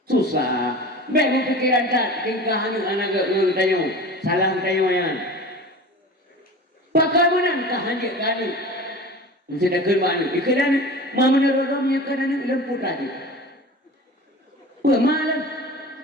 susah. Beg berpikiran tak tingkah anak tanya, salah tanya yang. Bagaimana hanya kali? Sudah kerana ikan mama nerodamnya kerana lemput tadi. Malam,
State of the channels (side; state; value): both; normal; correlation 0.36